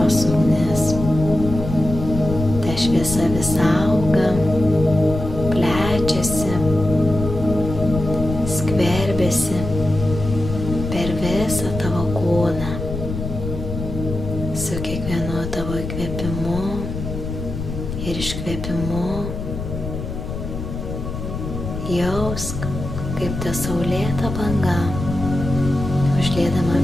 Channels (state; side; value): noise; left; rumble, 6 dB below the sound